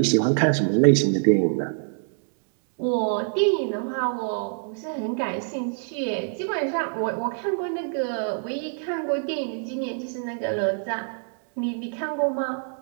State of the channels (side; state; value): left; silent; 61 dB below the other